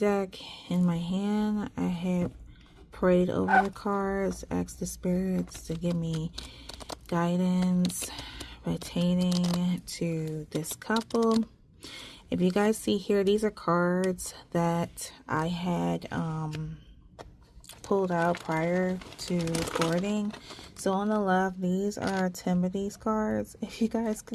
in my hand. I have prayed over the cards, asked the spirits to give me guidance pertaining to this couple. If you guys see here, these are cards that I had pulled out prior to recording. So on the left, these are Timothy's cards. If you guys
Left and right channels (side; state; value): both; identical; correlation 1.00